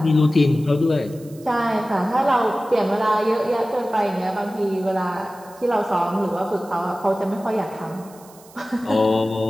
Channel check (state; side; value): noise; right; hiss, 24 dB below the sound